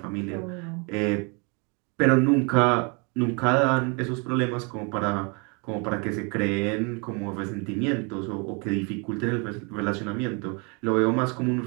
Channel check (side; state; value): left; quieter; 32.6 dB